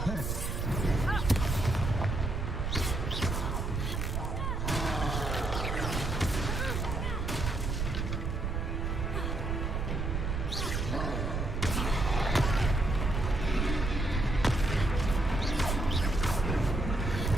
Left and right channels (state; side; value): noise; right; rumble, 1 dB below the sound